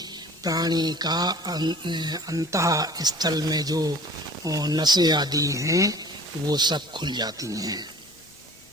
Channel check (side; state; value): both; normal; correlation 0.45